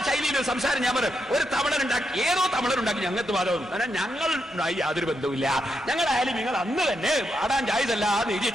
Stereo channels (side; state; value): both; normal; correlation 0.82